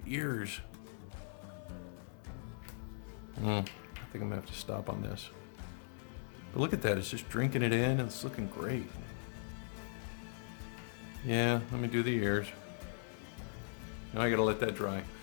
ears. I think I'm going to have to stop on this. But look at that, it's just drinking it in. It's looking great. Yeah, let me do the ears. Now I gotta let that dry.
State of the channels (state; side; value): silent; right; 51 dB below the other